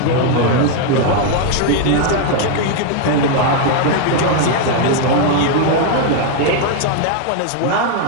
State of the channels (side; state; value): both; different; correlation 0.00